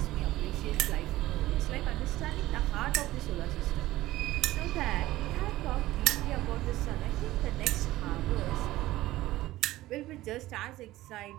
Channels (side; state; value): left; quieter; 16.5 dB